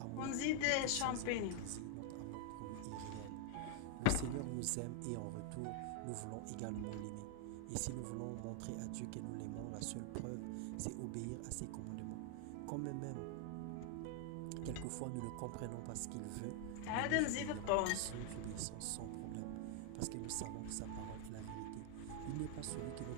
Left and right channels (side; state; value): both; different; correlation 0.00